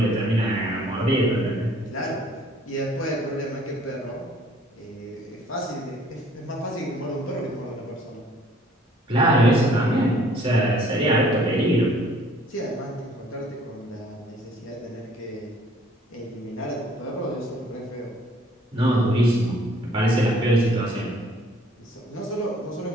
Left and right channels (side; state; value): both; normal; correlation 0.58